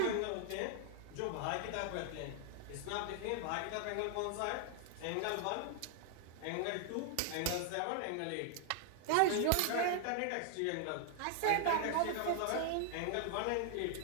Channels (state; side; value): different; both; correlation 0.00